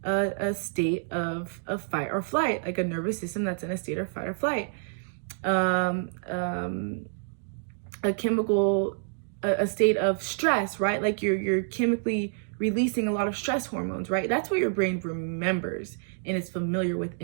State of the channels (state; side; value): silent; left; digital silence